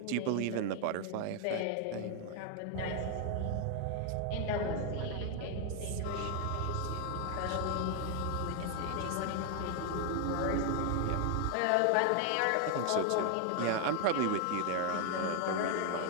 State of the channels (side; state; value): both; different; correlation 0.00